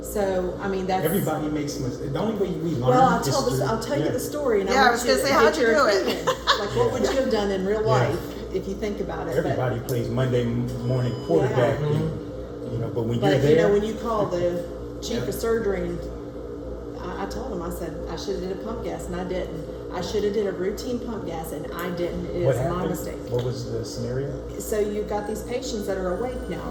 I mean, that's Everybody makes mistakes. The only way we learn Well, I'll is tell through- I'll tell you yeah. the story, and Yeah, I want was you gonna to say, get how'd you your do it? opinion. Like, what would you have done in real life if you think about it? But- Everybody plays Monday morning quarterback, but when you're But there, you know, when you call the chief of surgery, and I told him, I said I should have did a pump gas, and I didn't. I should have did a routine pump gas, and I didn't. It what is my happened? mistake. What was the scenario? So you've got these patients that are awake now,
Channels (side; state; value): both; identical; correlation 1.00